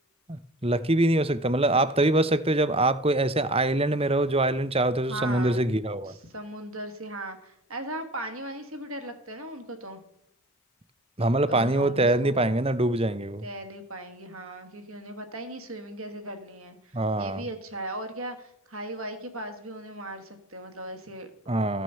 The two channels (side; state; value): both; normal; correlation 0.42